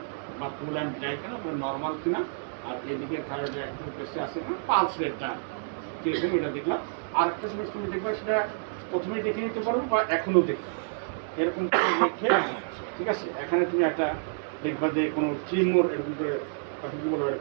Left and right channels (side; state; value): left; silent; 59 dB below the other